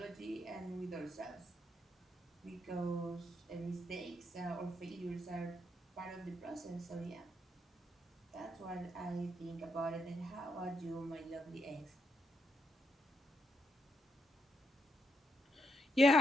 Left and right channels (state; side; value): normal; both; correlation 0.79